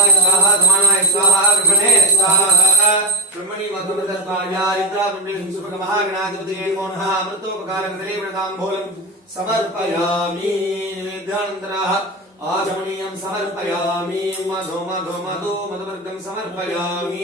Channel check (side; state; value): both; normal; correlation 0.18